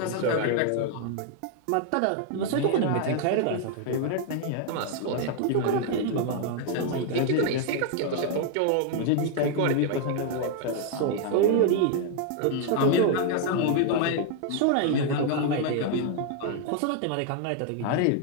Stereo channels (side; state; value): both; different; correlation 0.00